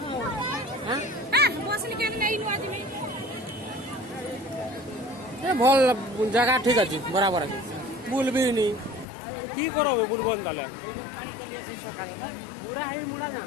भल जगह ठीक अच्छे बराबर अच्छे बुल भी नहीं की करो बुलबन ताले पूरा हाई मुड़ा ना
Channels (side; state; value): right; drops out; at 9.1 s